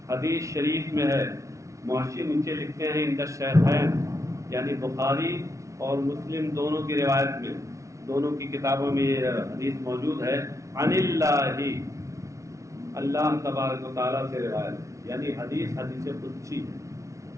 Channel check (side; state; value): left; late; 0.15 ms